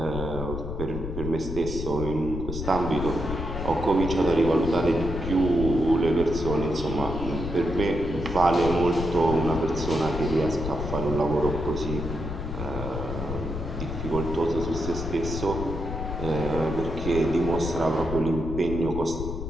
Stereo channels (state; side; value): noise; left; rumble, 6 dB below the sound